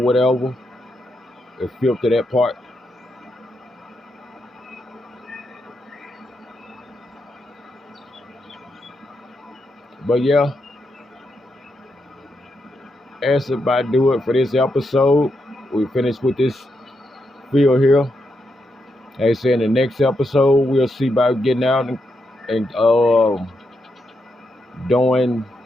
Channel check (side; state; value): both; normal; correlation 0.83